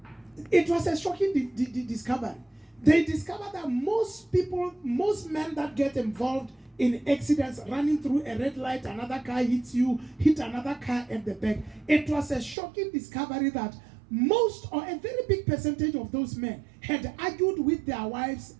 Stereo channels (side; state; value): left; drops out; at 12.6 s